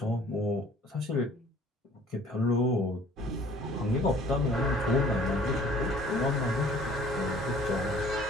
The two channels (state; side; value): normal; both; correlation 0.53